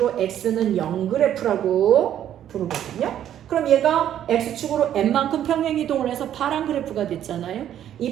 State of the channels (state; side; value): quieter; left; 10.8 dB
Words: x는 0 그래프라고 부르거든요. 그럼 얘가 x축으로 n만큼 평행이동을 해서 파란 그래프가 됐잖아요. 이